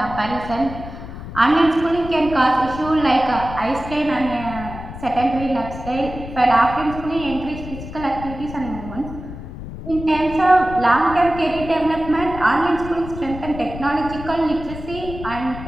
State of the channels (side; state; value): left; noise; rumble, 11 dB below the sound